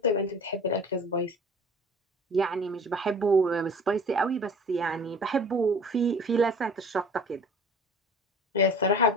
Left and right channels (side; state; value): both; normal; correlation 0.44